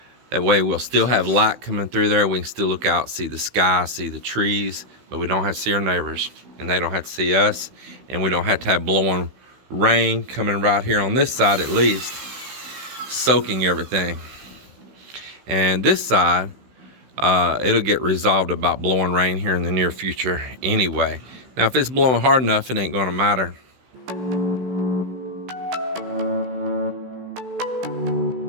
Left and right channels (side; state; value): left; late; 16 ms